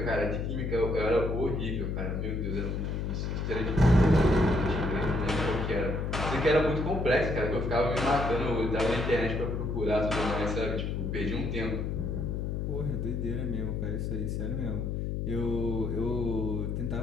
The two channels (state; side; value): noise; left; hum, 1 dB below the sound